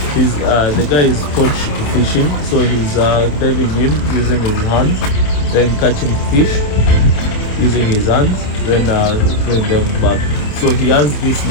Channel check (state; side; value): late; right; 28 ms